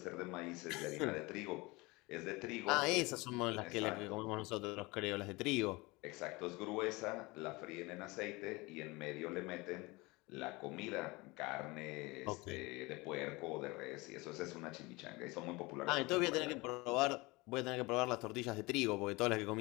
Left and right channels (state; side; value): quieter; right; 23.8 dB